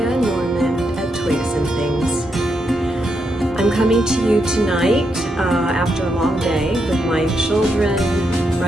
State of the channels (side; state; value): both; normal; correlation 0.81